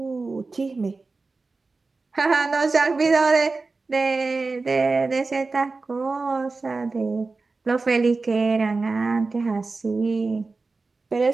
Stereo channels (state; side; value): quieter; left; 3.8 dB